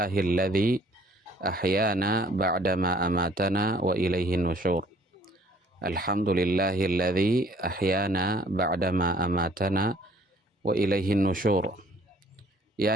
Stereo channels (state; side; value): normal; both; correlation 0.58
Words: ahyana ba'dama amatana wa ilaihin nusyur. Alhamdulillahilladzi ahyana ba'dama amatana wa ilaihin nusyur.